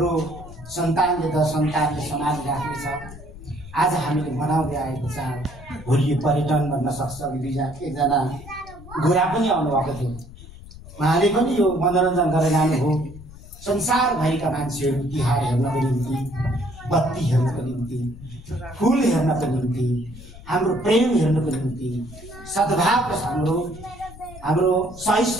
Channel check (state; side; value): noise; left; rumble, 17 dB below the sound